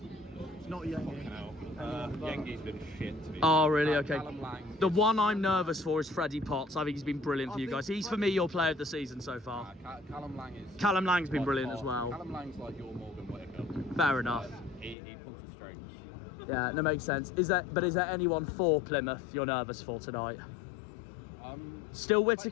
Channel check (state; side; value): drops out; right; at 15.0 s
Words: It's not Yengi. Yengi's been shit to me. Oh, really? Okay. The one I'm nervous for is Freddie Potts. I think he's been brilliant for you guys. He's, for me, your player of the season so far. Callum Lang's been brilliant as well. Callum Lang's like your Morgan Whittaker. Fair enough. He pulls the strings. Yeah, that makes sense. Is there anyone for Plymouth you're nervous for tonight? Still